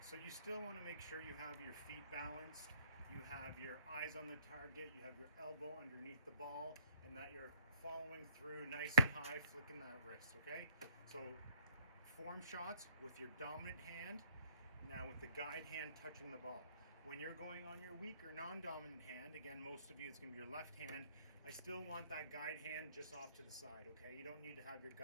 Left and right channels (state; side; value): inverted; both; correlation -0.62